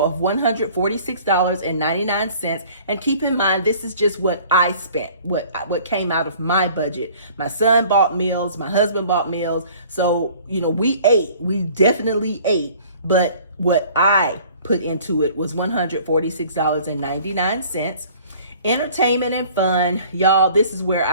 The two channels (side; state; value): both; inverted; correlation -0.51